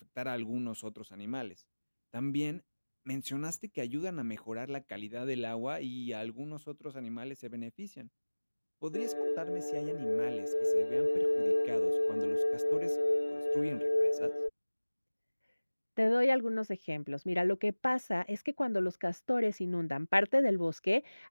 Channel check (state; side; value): inverted; both; correlation -1.00